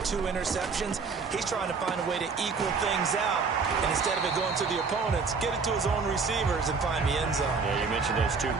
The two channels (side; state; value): left; quieter; 4.9 dB